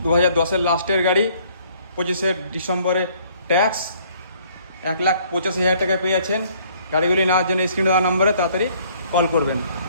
2010-এর লাস্টের গাড়ি, 25 ডিসেম্বরে ট্যাক্স, 1,85,000 টাকায় পেয়ে যাচ্ছেন। গাড়িগুলি নেওয়ার জন্য স্ক্রিনে দেওয়া নম্বরে তাড়াতাড়ি কল করবেন।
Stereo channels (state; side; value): inverted; both; correlation -0.61